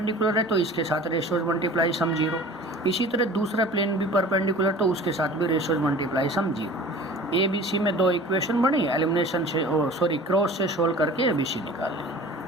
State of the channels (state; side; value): normal; both; correlation 0.42